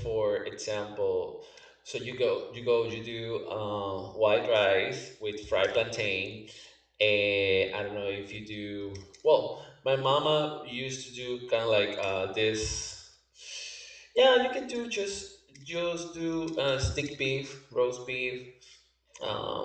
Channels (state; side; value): identical; both; correlation 1.00